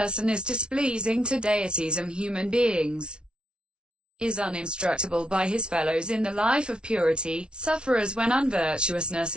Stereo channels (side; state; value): left; late; 0.056 ms